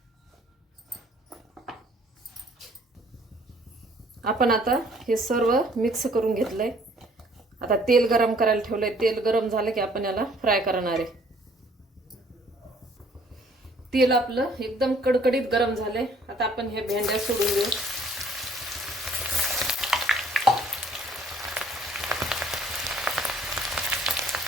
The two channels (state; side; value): normal; both; correlation 0.59